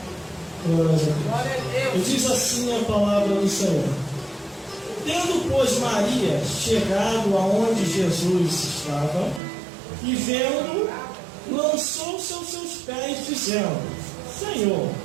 Glória a Deus. E diz assim a palavra do Senhor: tendo, pois, Maria chegado aonde Jesus estava, e vendo, lançou-se aos seus pés, dizendo: Senhor,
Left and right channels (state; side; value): drops out; left; at 9.4 s